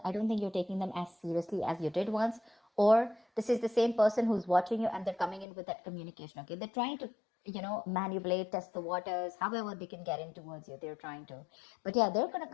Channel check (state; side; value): drops out; right; at 5.5 s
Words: I don't think you're taking them as seriously as you did once. Or this is the same person who's watching you and they're coming in with that communication, okay? They're trying to, manipulate, test the waters, however they can get in towards you. They're trying to. But yeah, they're going to